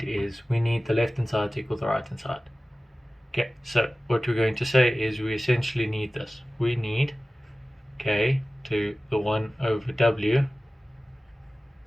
is, we need the left hand side to equal the right hand side. Okay, so what we're going to say is we essentially need this. We need k to the 1 over w.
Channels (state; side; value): normal; both; correlation 0.96